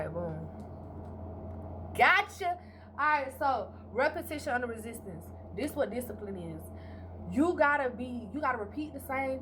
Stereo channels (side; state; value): both; identical; correlation 1.00